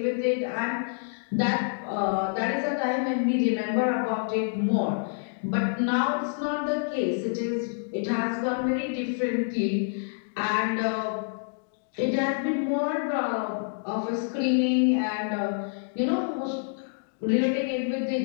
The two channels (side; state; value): right; silent; digital silence